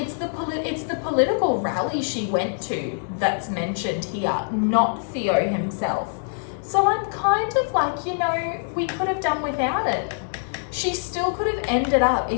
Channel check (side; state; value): right; silent; digital silence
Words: the political rally she went to that's mentioned here, not Theo himself. So I'm kind of like, you know, we could have done without it. She still could have ended up,